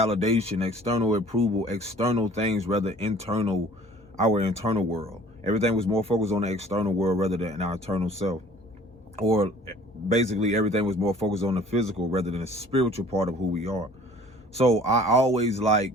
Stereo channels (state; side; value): normal; both; correlation 0.51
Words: external approval, external things, rather internal, our internal world. Everything was more focused on the external world rather than our internal self. Or basically everything was more focused on the physical rather than the spiritual part of who we are. So I always